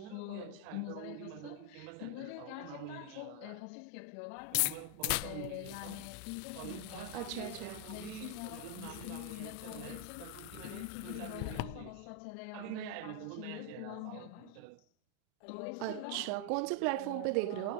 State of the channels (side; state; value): both; different; correlation 0.00